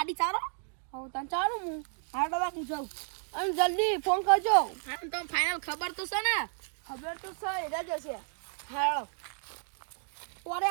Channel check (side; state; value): left; silent; 56 dB below the other